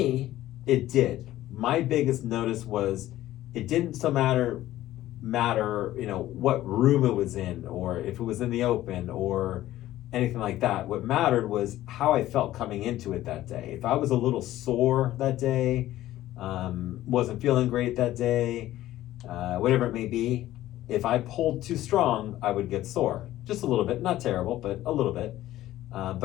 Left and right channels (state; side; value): quieter; right; 14.6 dB